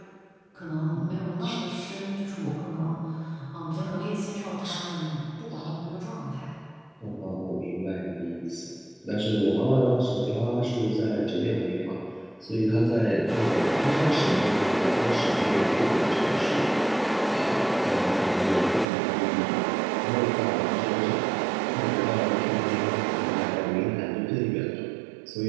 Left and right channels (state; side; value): drops out; left; at 18.9 s